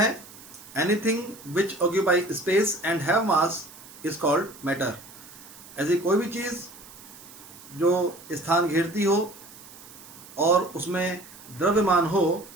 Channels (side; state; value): right; noise; hiss, 19 dB below the sound